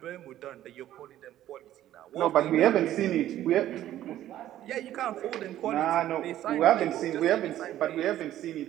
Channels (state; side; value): quieter; left; 12.8 dB